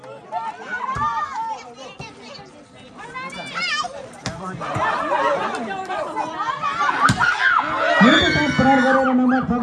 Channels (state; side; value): identical; both; correlation 1.00